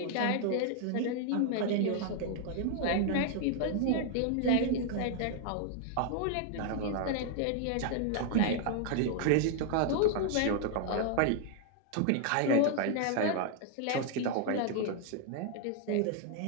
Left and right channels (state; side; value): different; both; correlation 0.00